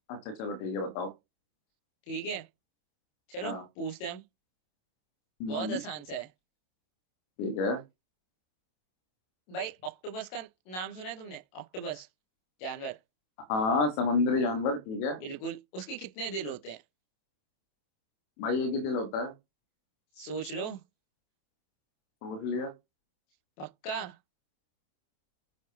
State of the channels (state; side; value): late; right; 27 ms